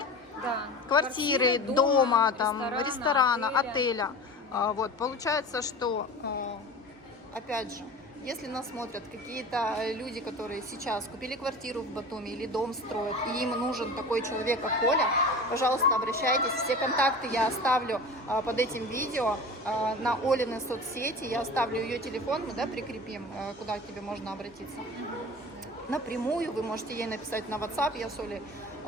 Да. Квартиры, дома, там, ресторана, отеля. отеля. Вот, получается, что, опять же, если нас смотрят какие-то люди, которые сейчас купили квартиру в Батуми или дом строят, и им нужен такой человек, как Оля, пожалуйста, обращайтесь. Все контакты я оставлю под этим видео на Олины соцсети. Я оставлю ее телефон, мы, да, прикрепим, куда к тебе можно обратиться. Напрямую вы можете ей написать на WhatsApp. Я с Олей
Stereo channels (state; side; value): normal; both; correlation 0.35